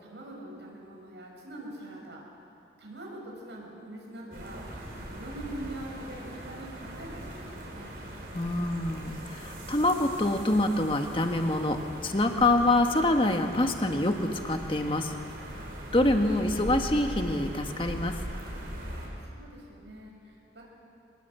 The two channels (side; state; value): both; normal; correlation 0.56